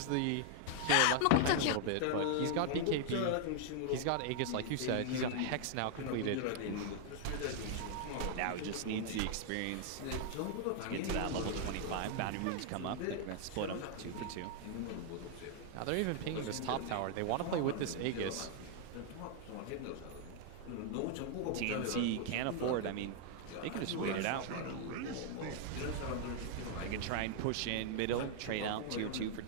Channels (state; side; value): different; both; correlation 0.00